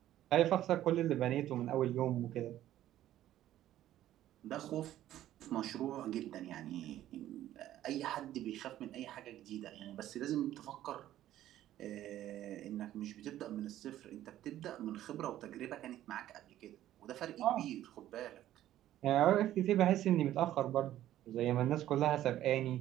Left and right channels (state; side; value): quieter; left; 13.0 dB